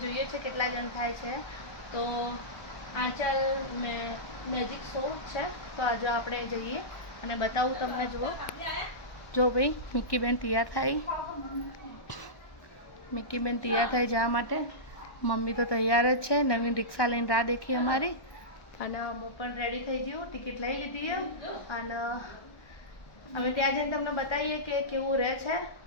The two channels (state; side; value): late; right; 1.2 ms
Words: જોઈએ છે કેટલા જણ થાય છે. તો આંચલ મેજિક શો છે, તો આજે આપણે જઈએ અને બતાવું તમને. જો ભાઈ મિક્કીબેન તૈયાર થાય, મિક્કીબેન તૈયાર થાય જવા માટે. મમ્મી તો તૈયાર જ છે, નવીન રિક્ષા લઈને રાહ દેખી અમારી. અને હું પણ રેડી થઈ ગયું, ટિકિટ લઈ લીધી અને અમે ત્યાં જઈને તમને બતાવીએ કે કેવું રહે છે.